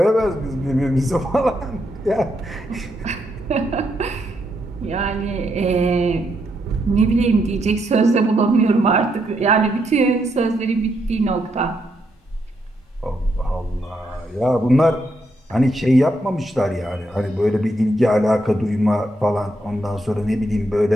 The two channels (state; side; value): normal; both; correlation 0.78